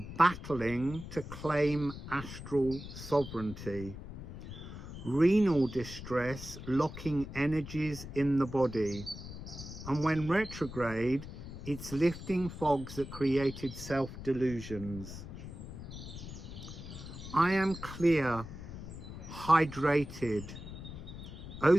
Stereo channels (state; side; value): noise; left; rumble, 11 dB below the sound